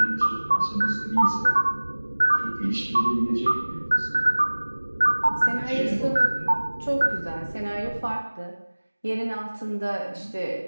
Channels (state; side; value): inverted; both; correlation -1.00